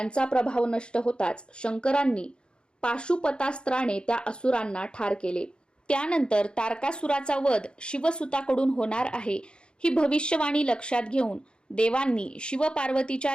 प्रभाव नष्ट होताच शंकरांनी पाशुपतास्त्राने त्या असुरांना ठार केले. त्यानंतर तारकासुराचा वध शिवसुताकडून होणार आहे ही भविष्यवाणी लक्षात घेऊन देवांनी शिवपार्वतीच्या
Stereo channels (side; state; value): right; late; 0.052 ms